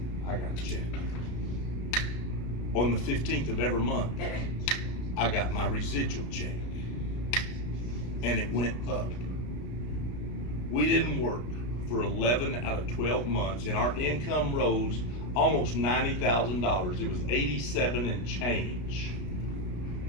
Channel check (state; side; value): late; right; 33 ms